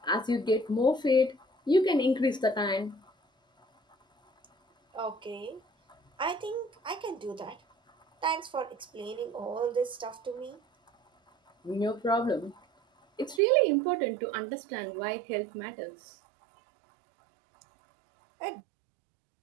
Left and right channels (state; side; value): drops out; left; at 13.4 s